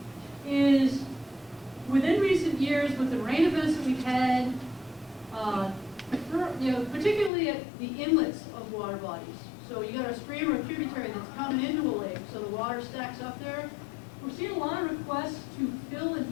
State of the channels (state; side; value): drops out; right; at 7.3 s